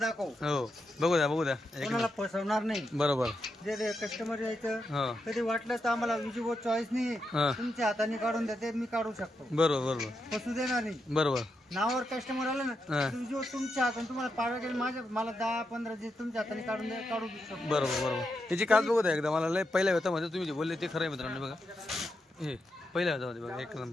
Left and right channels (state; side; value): normal; both; correlation 0.84